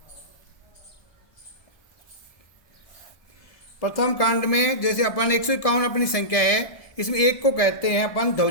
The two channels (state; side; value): late; right; 1.6 ms